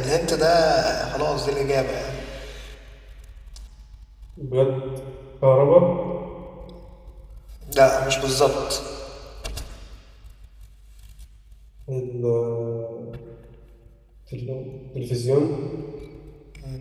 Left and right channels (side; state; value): both; identical; correlation 1.00